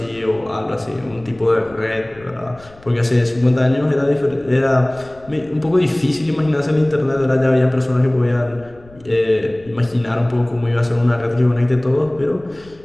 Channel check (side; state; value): left; noise; rumble, 25 dB below the sound